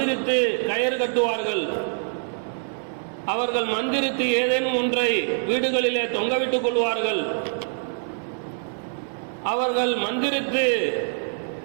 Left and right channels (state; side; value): silent; left; digital silence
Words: கயிறு கட்டுவார்கள். அவர்கள் மந்திரித்து ஏதேனும் ஒன்றை வீடுகளிலே தொங்கவிட்டுக் கொள்வார்கள். அவர்கள் மந்திரித்து